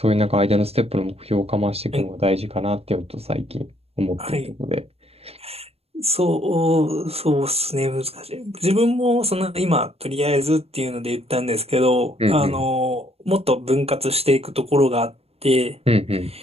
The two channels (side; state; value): left; late; 0.29 ms